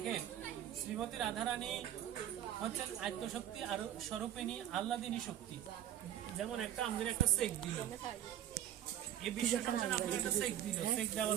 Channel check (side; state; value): left; quieter; 11.2 dB